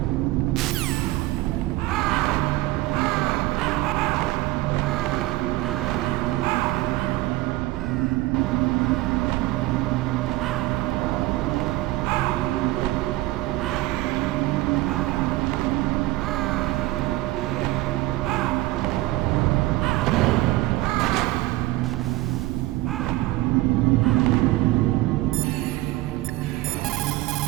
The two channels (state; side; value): quieter; left; 18.6 dB